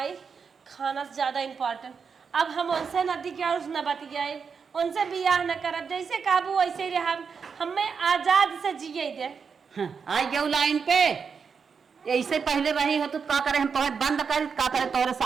खाना से ज्यादा इम्पोर्टेंट अब हम उनसे नदी के और न बतियाए उनसे बियाह न करब जैसे काबू वैसे ही रह हमें आजाद से जिए दे आई गयो लाइन पे ऐसे पहले रही हो तो का करे हम तोहर बंद कर का करे तोहरे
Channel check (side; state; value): left; quieter; 5.9 dB